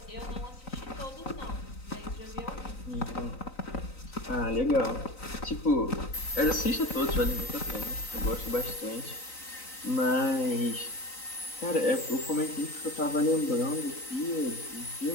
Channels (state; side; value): late; right; 3.9 ms